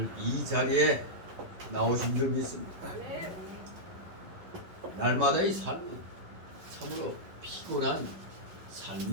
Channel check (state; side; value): late; left; 11 ms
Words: 이 자리에 나오신 줄 믿습니다. 날마다의 삶은 참으로 피곤한